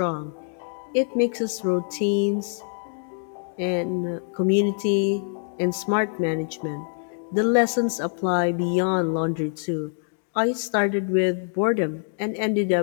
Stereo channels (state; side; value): silent; right; 57 dB below the other